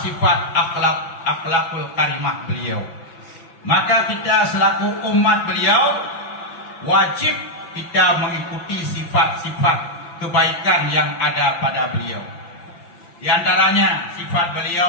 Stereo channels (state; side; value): late; right; 5.9 ms